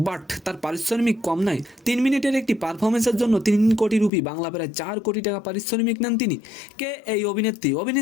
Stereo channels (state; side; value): drops out; right; at 4.1 s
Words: বাট তার পারিশ্রমিক কম নয়। 3 মিনিটের একটি পারফরমেন্সের জন্য 3 কোটি রুপি, বাংলা প্রায় 4 কোটি টাকা পারিশ্রমিক নেন তিনি। কে এই অভিনেত্রী?